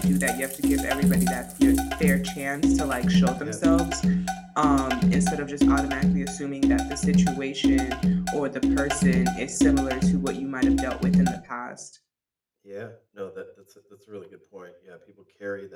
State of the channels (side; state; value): both; identical; correlation 1.00